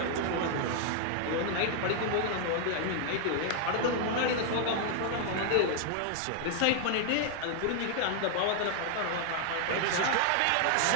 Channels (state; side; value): different; both; correlation 0.00